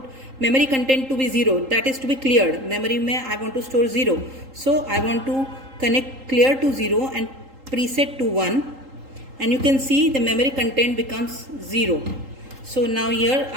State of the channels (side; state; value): left; late; 3.8 ms